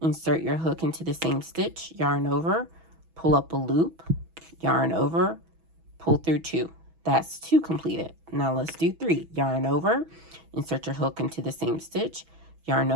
your hook into the same stitch, yarn over, pull up a loop, yarn over, pull through 2. That's 2 completed. Now let's do 3. Yarn over, insert your hook into the same stitch, yarn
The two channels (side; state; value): left; late; 6.1 ms